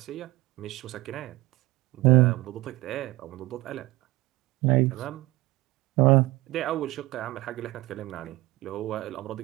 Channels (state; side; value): quieter; left; 19.7 dB